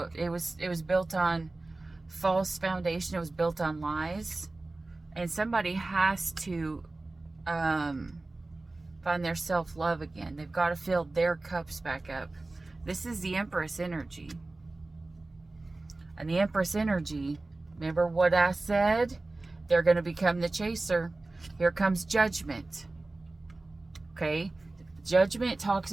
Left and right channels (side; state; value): left; quieter; 3.1 dB